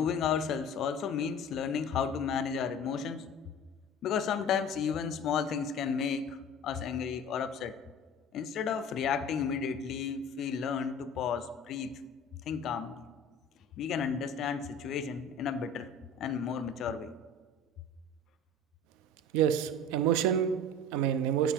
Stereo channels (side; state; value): both; normal; correlation 0.39